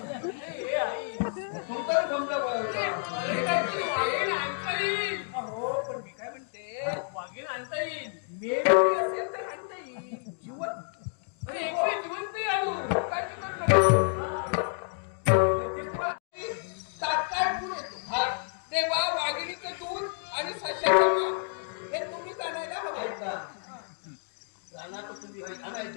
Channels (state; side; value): silent; right; digital silence